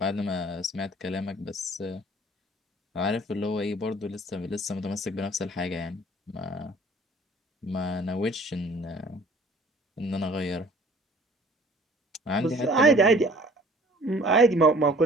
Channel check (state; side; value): normal; both; correlation 0.52